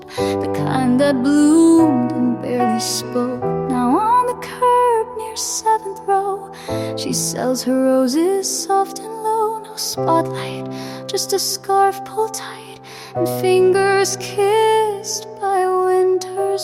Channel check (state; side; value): identical; both; correlation 1.00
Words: the kind that bloomed and barely spoke. Now on the curb near 7th row, she sells her roses soft and low. No spotlight, just a scarf pulled tight and fingers kissed by